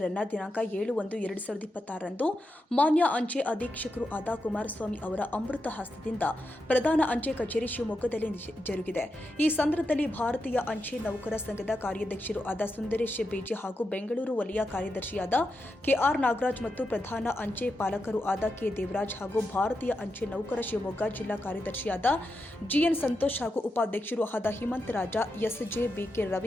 ಅನ್ನು ದಿನಾಂಕ 7/1/2026ರಂದು ಮಾನ್ಯ ಅಂಚೆ ಅಧೀಕ್ಷಕರು ಆದ ಕುಮಾರಸ್ವಾಮಿ ಅವರ ಅಮೃತ ಹಸ್ತದಿಂದ ಪ್ರಧಾನ ಅಂಚೆ ಕಚೇರಿ ಶಿವಮೊಗ್ಗದಲ್ಲಿ ಜರುಗಿದೆ. ಈ ಸಂದರ್ಭದಲ್ಲಿ ಭಾರತೀಯ ಅಂಚೆ ನೌಕರ ಸಂಘದ ಕಾರ್ಯಾಧ್ಯಕ್ಷರು ಆದ ಸುಂದರೇಶ್ ಬೇಜಿ ಹಾಗೂ ಬೆಂಗಳೂರು ವಲಯ ಕಾರ್ಯದರ್ಶಿಯಾದ ಕೆಆರ್ ನಾಗರಾಜ್ ಮತ್ತು ಪ್ರಧಾನ ಅಂಚೆ ಪಾಲಕರು ಆದ ಕೆ ದೇವರಾಜ್ ಹಾಗೂ ಭಾರತೀಯ ಅಂಚೆ ನೌಕರ ಶಿವಮೊಗ್ಗ ಜಿಲ್ಲಾ ಕಾರ್ಯದರ್ಶಿಯಾದ ಜಿಎನ್ ಸಂತೋಷ್ ಹಾಗೂ ಉಪಾಧ್ಯಕ್ಷರು ಆದ ಹಿಮಂತ್ ರಾಜ, ಎಸ್ಜೆ, ಬಿಕೆ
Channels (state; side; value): normal; both; correlation 0.87